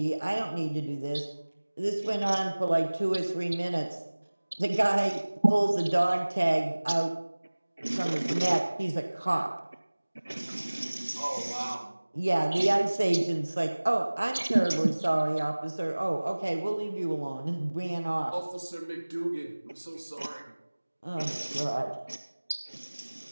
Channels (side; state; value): both; inverted; correlation -1.00